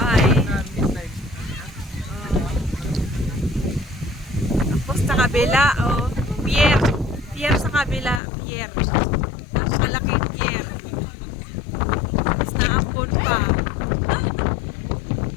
Tapos sa kabila, pier. Pier sa kabila, pier. Malaking pier. Tapos naambon pa.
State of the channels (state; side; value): drops out; right; at 8.2 s